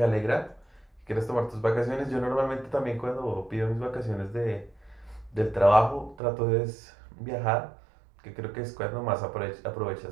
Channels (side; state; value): left; drops out; at 6.2 s